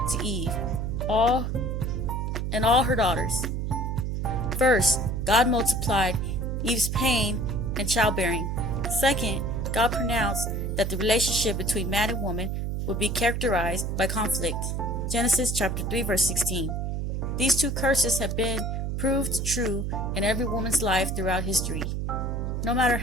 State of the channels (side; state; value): right; noise; hum, 1 dB below the sound